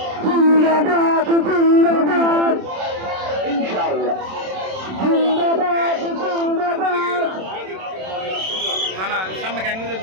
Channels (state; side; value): late; left; 27 ms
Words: জিন্দাবাদ জিন্দাবাদ ইনশাআল্লাহ জিন্দাবাদ জিন্দাবাদ না না সামনে ক্যাঙ্গু